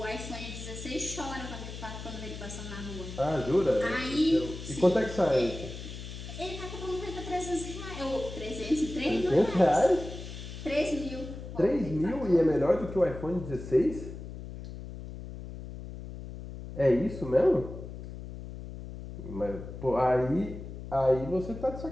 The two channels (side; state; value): left; noise; hum, 10 dB below the sound